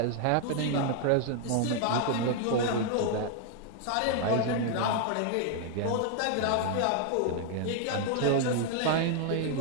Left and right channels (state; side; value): different; both; correlation 0.00